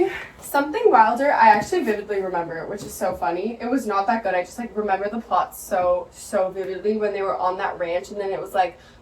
Something Wilder. I actually vividly remember it, which is so funny. It was not that good. I just like remember the plot so vividly when they were on that ranch, and then it was like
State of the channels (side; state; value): both; identical; correlation 1.00